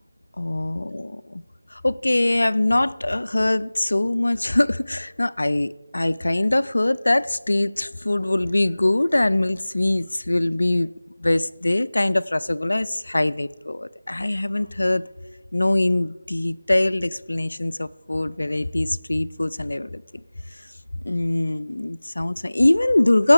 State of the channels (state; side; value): inverted; both; correlation -1.00